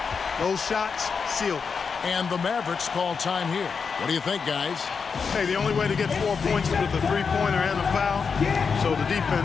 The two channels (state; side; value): quieter; right; 5.6 dB